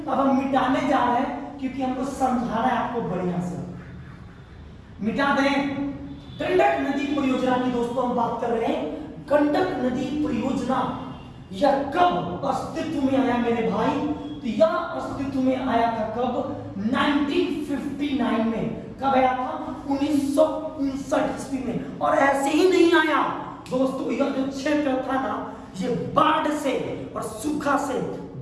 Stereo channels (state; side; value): identical; both; correlation 1.00